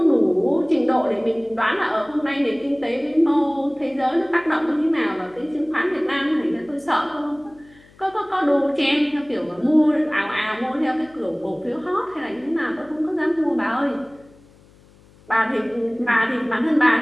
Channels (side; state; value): left; noise; hum, 27 dB below the sound